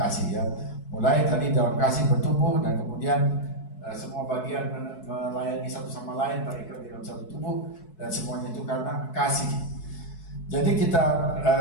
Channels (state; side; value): late; right; 4.6 ms